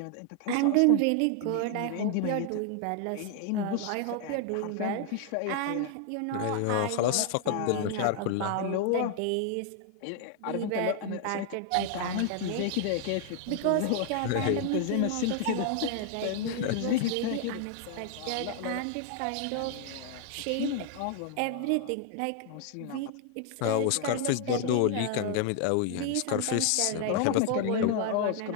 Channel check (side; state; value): both; different; correlation 0.00